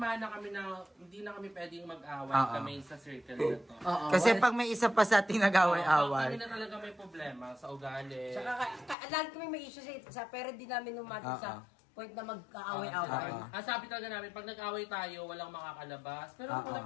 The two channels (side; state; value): right; drops out; at 9.0 s